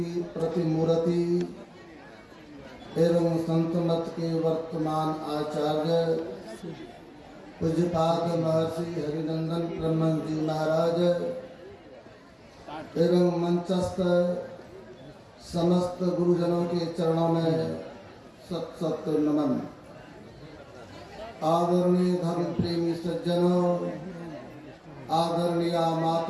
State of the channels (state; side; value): identical; both; correlation 1.00